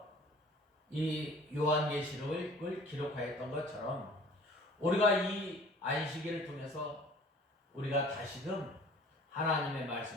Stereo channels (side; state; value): both; normal; correlation 0.48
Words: 이 요한계시록을 기록하였던 것처럼 우리가 이 안식일을 통해서 우리가 다시금 하나님의